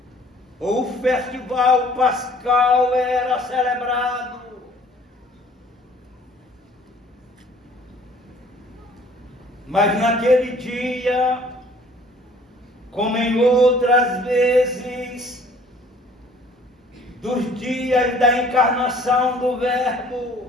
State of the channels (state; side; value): normal; both; correlation 0.55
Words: ou o festival pascal era celebrado. Mas naquele dia, como em outras vezes, dos dias da encarnação do